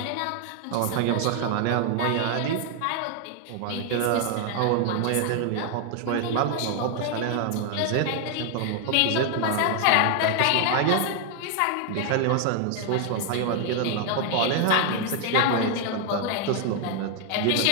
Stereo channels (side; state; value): both; different; correlation 0.00